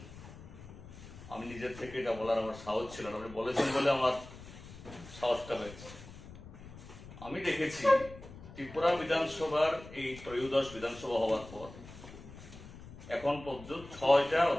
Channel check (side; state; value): left; noise; rumble, 16 dB below the sound